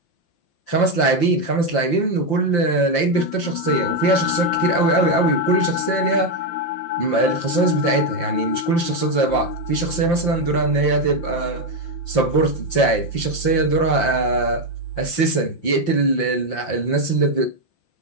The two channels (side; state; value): right; late; 5.8 ms